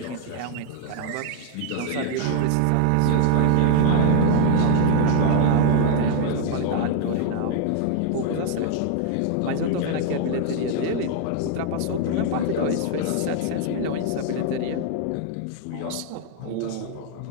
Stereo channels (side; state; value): both; different; correlation 0.00